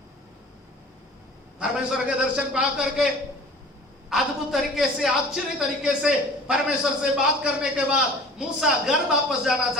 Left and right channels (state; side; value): normal; both; correlation 0.44